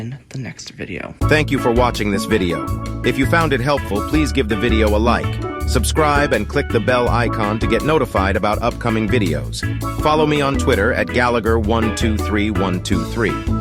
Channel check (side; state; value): both; identical; correlation 1.00